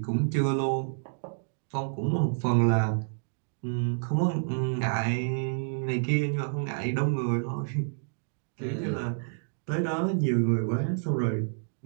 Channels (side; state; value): left; silent; digital silence